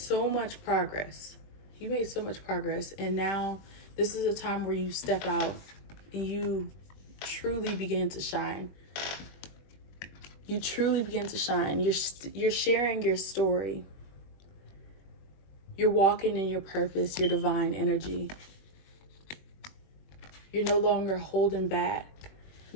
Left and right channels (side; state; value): right; late; 21 ms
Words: much progress. You made so much progress. And now this is a time where you step out and you truly begin to shine. You truly begin to shine. You're sharing your story. You're walking in your purpose, your divine energy. You're no longer holding back,